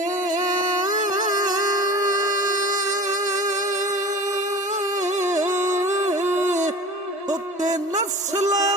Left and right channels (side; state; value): both; normal; correlation 0.37